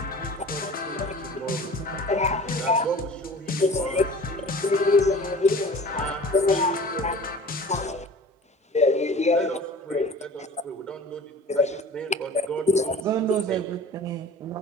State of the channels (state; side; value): normal; both; correlation 0.43